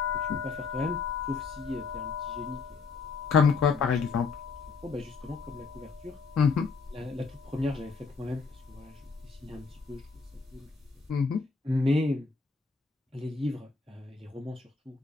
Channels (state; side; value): quieter; right; 4.7 dB